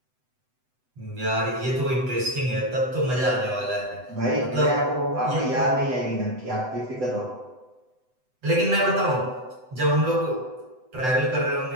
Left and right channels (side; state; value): left; late; 7.9 ms